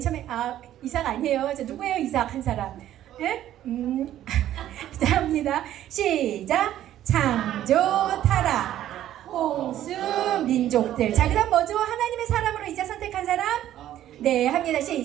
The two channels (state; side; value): quieter; left; 12.3 dB